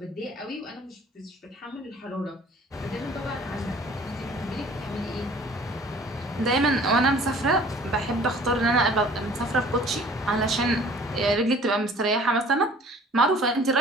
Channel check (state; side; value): normal; both; correlation 0.50